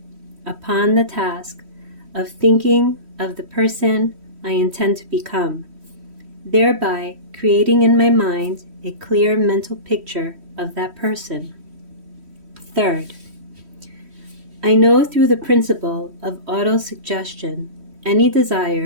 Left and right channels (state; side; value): late; left; 3.1 ms